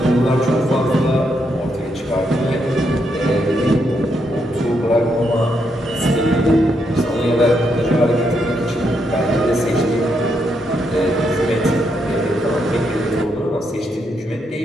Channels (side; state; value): both; normal; correlation 0.79